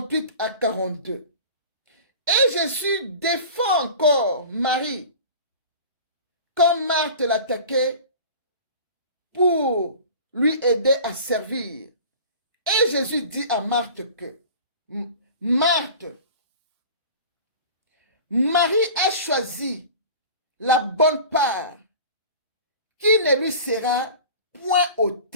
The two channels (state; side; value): inverted; both; correlation -0.39